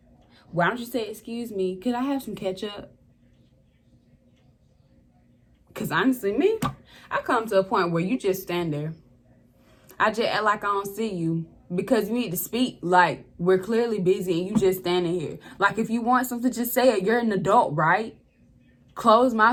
Why don't you say, excuse me, could I have some ketchup? Because honestly, me, I come to a point where you just stand there. I just act like I don't see you. Because you need to speak. Like, we're clearly busy and you just standing here. Like, if you want something, just say it. You're an adult, right? Closed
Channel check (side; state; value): both; identical; correlation 1.00